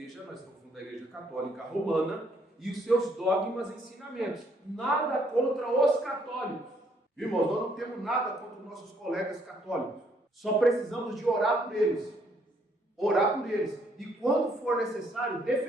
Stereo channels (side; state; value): both; normal; correlation 0.68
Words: nós estamos falando da Igreja Católica Romana, e os seus dogmas e ensinamentos. Nada contra os católicos. Irmãos, nós não temos nada contra os nossos colegas católicos. Só precisamos de orar por eles. Orar por eles. E quando for necessário,